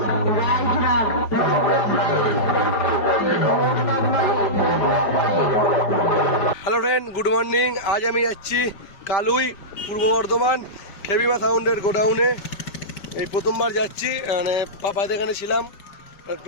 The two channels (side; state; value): right; late; 5.1 ms